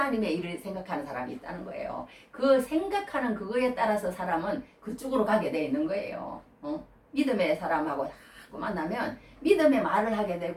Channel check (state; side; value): identical; both; correlation 1.00